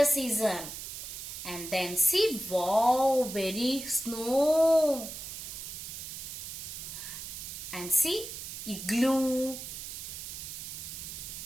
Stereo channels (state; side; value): noise; right; hiss, 8 dB below the sound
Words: season? And then see, wow, very snow. And see, igloo.